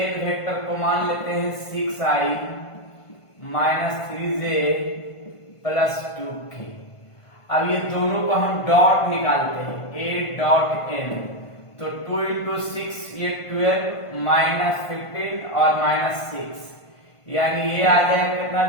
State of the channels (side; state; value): right; late; 1.5 ms